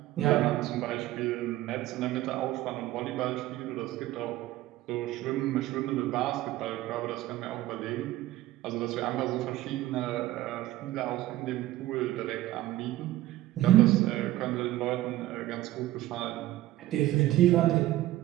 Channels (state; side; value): quieter; left; 15.6 dB